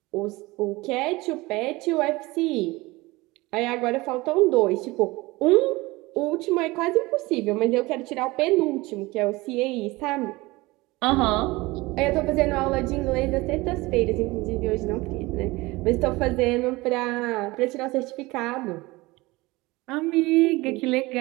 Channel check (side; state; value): left; quieter; 21.7 dB